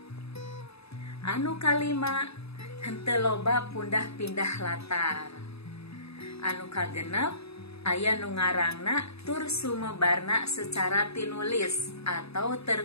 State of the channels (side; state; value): right; late; 0.78 ms